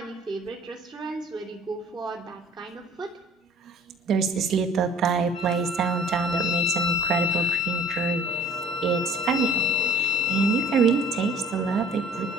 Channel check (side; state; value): both; normal; correlation 0.51